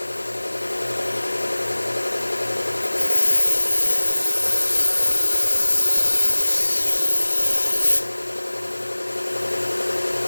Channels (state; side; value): inverted; both; correlation -1.00